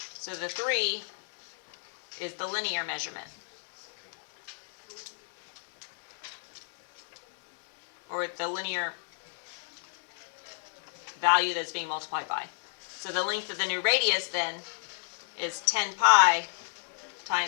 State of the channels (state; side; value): silent; right; digital silence